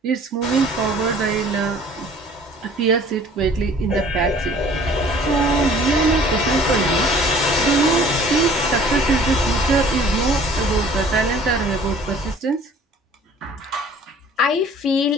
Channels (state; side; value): normal; both; correlation 0.51